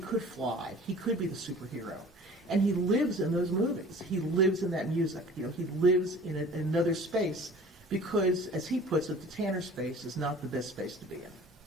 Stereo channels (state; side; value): normal; both; correlation 0.45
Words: fly, he could be the superhero. And he lives in those movies. He lives in that music. He lives in another space because, as he puts it, the Tanner space is not the best space to be in.